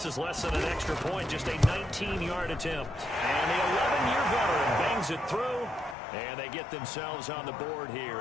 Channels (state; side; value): drops out; right; at 6.0 s